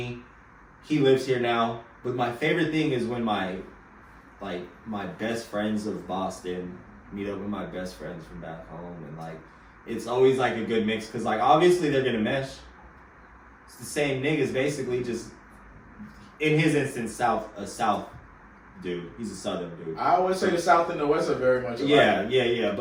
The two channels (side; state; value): both; identical; correlation 1.00